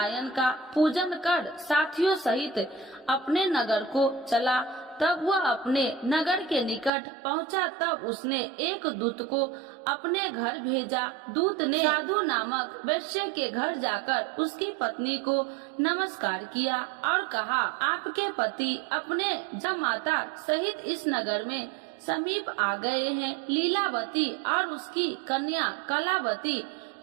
का पूजन कर साथियों सहित अपने नगर को चला। तब वह अपने नगर के निकट पहुंचा। तब उसने एक दूत को अपने घर भेजा। दूत ने साधु नामक वैश्य के घर जाकर उसकी पत्नी को नमस्कार किया और कहा, आपके पति अपने जमाता सहित इस नगर में समीप आ गए हैं। लीलावती और उसकी कन्या कलावती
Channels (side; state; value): left; drops out; at 6.9 s